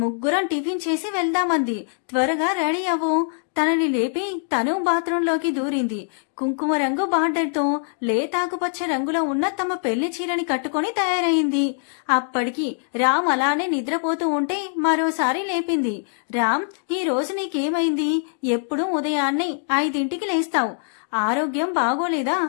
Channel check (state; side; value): silent; right; digital silence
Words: ముగ్గురం టిఫిన్ చేసి వెళ్దామంది. త్వరగా రెడీ అవ్వు. తనని లేపి తను బాత్రూంలోకి దూరింది. కుంకుమ రంగు బార్డర్తో లేతాకుపచ్చ రంగులో ఉన్న తమ పెళ్లి చీరని కట్టుకుని తయారైంది. అప్పటికి రామ్ అలానే నిద్రపోతూ ఉంటే మరోసారి లేపింది. రామ్, ఈ రోజు నీకేమైంది? ఎప్పుడూ ఉదయాన్నే 5ంటికి లేస్తావు. ఆరోగ్యం బాగోలేదా?